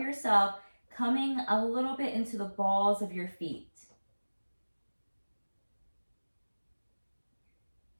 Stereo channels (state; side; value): inverted; both; correlation -1.00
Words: coming a little bit into the balls of your feet.